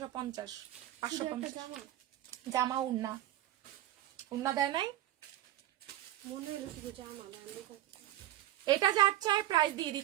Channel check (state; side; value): quieter; left; 13.6 dB